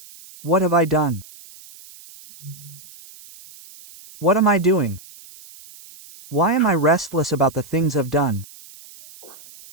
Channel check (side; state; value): right; noise; hiss, 21 dB below the sound